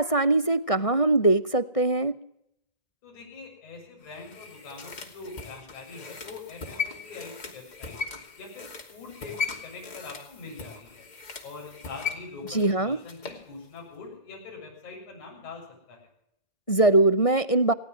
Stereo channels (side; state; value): right; late; 1.6 ms